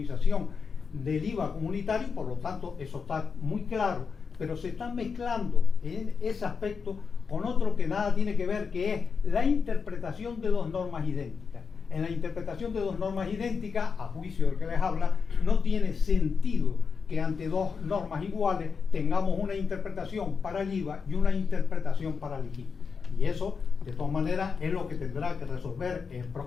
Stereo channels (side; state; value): right; quieter; 5.6 dB